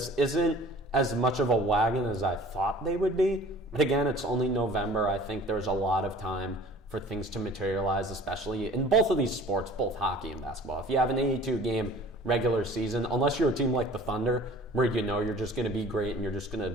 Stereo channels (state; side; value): normal; both; correlation 0.47